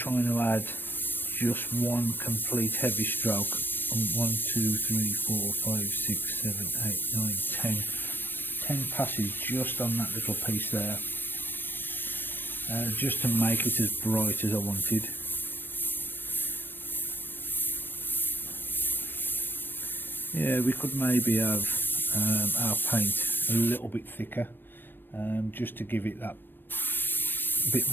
to add just one complete heavy stroke, 1, 2, 3, 4, 5, 6, 7, 8, 9, 10 passes just on that little piece there, just to make it as bright as I wanted. Yeah, we could maybe have our paint a little bit thicker, just to give it that bit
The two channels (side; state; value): right; late; 0.096 ms